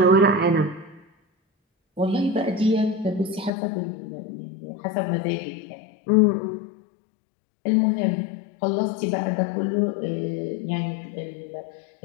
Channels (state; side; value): drops out; right; at 3.5 s